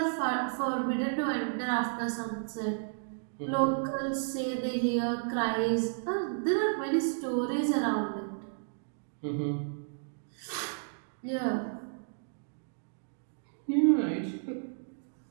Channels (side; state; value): left; silent; digital silence